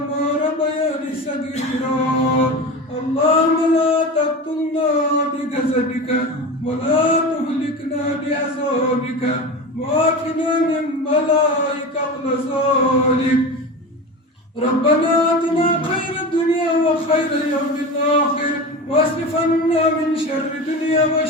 ربياني صغيرا اللهم لا تقتلنا بغضبك ولا تهلكنا بعذابك وعافنا من بلائك وغضبك ربنا آتنا خير الدنيا وخير يوم الآخر واصرف عنا من شر الدنيا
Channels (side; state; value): both; normal; correlation 0.27